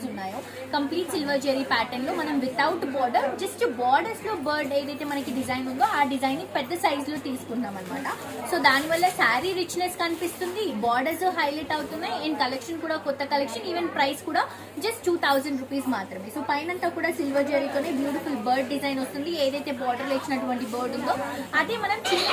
ఉన్నాయో. కంప్లీట్ సిల్వర్ జెరీ ప్యాటర్న్ లో మనం వితౌట్ బార్డర్, జస్ట్ బార్డర్స్ లో బర్డ్ ఏదైతే మనకి డిజైన్ ఉందో ఆ డిజైన్ ని పెద్ద సైజ్ లో తీసుకున్నాం అనమాట. సో దానివల్ల శారీ రిచ్నెస్ కనిపిస్తుంది, బార్డర్స్ హైలైట్ అవుతున్నాయి, అండ్ కలెక్షన్ కూడా కొత్త కలెక్షన్. ఈవెన్ ప్రైస్ కూడా జస్ట్ 2000 రూపీస్ మాత్రమే. సో పైనంతా కూడా సిల్వర్ జెరీతోనే బ్యూటిఫుల్ బర్డ్ డిజైన్ వస్తుంది. ఏదైతే బార్డర్ లో ఇచ్చినటువంటి బర్డ్ ఉందో అదే మనం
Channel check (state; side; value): identical; both; correlation 1.00